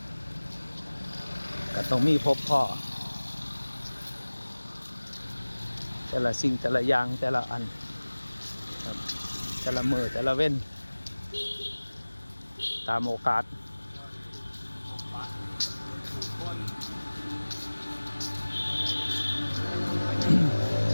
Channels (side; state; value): both; inverted; correlation -1.00